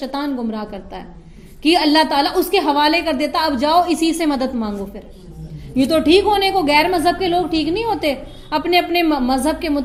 گمراہ کرتا ہے کہ اللہ تعالیٰ اس کے حوالے کر دیتا, اب جاؤ اسی سے مدد مانگو. پھر یہ تو ٹھیک ہونے کو, غیر مذہب کے لوگ ٹھیک نہیں ہوتے. اپنے اپنے مذہب کے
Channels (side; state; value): both; identical; correlation 1.00